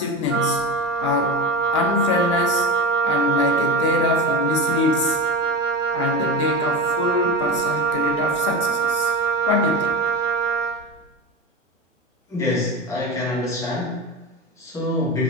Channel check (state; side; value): normal; both; correlation 0.22